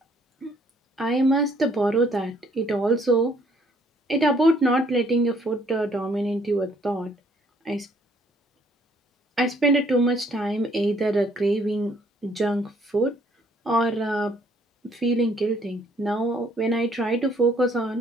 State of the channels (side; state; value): both; normal; correlation 0.64